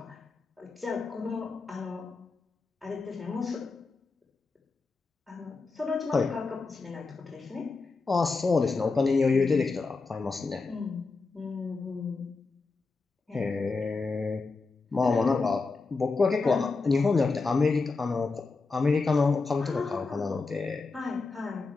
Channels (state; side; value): quieter; right; 4.1 dB